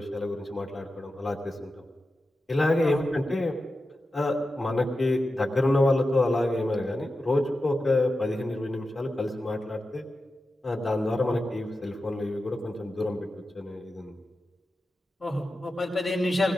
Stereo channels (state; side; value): normal; both; correlation 0.92